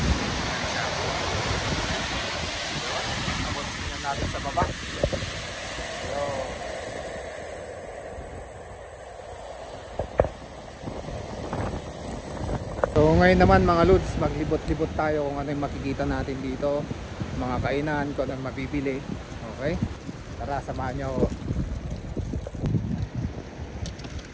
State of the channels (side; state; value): both; identical; correlation 1.00